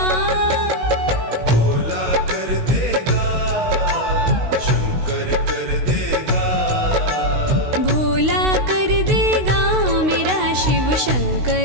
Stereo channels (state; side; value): late; left; 16 ms